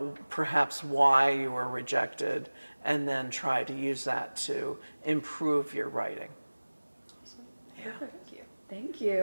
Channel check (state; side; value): inverted; both; correlation -1.00